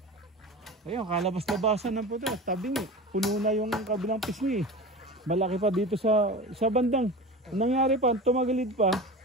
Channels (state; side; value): normal; both; correlation 0.31